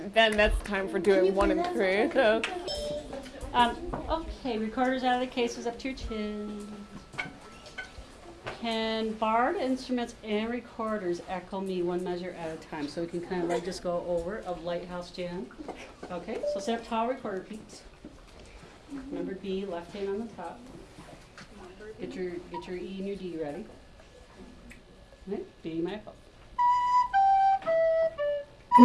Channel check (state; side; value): identical; both; correlation 1.00